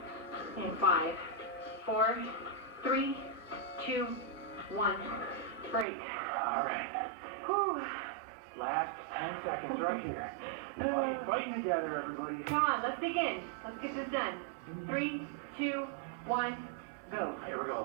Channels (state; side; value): drops out; left; at 5.9 s